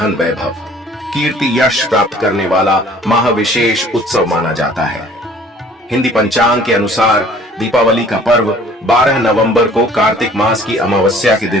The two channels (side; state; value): both; normal; correlation 0.53